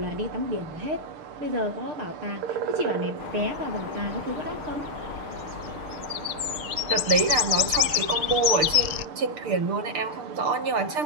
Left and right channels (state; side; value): late; left; 6.5 ms